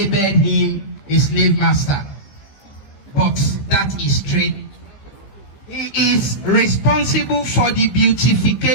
him a slave master, but that is straight. He is responsible for the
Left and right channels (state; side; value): late; right; 15 ms